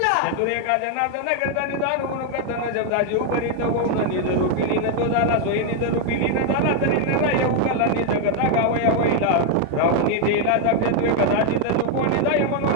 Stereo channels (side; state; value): both; different; correlation 0.01